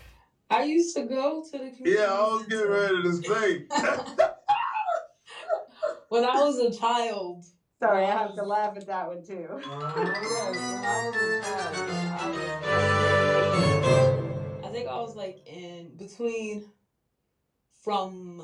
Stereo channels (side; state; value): both; identical; correlation 1.00